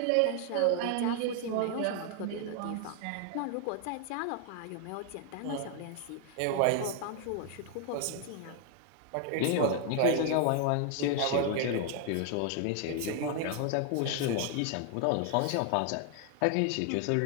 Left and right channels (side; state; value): both; different; correlation 0.00